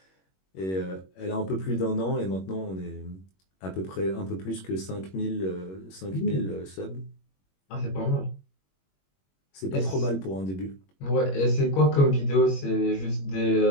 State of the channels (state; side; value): late; right; 21 ms